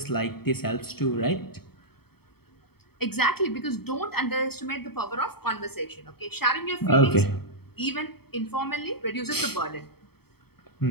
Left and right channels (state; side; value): late; right; 0.96 ms